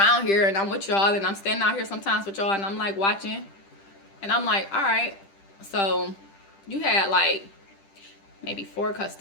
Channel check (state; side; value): late; right; 10 ms